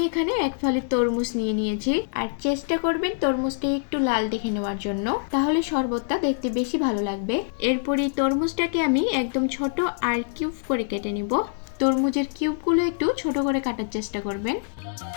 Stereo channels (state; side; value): silent; right; digital silence